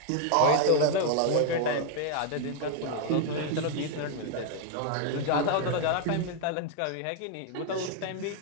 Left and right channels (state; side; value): different; both; correlation 0.00